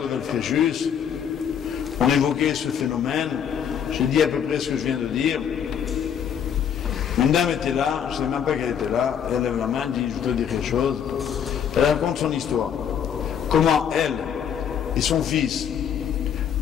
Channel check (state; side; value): quieter; right; 8.3 dB